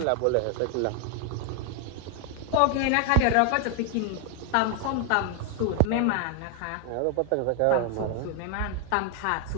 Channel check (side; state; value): both; different; correlation 0.00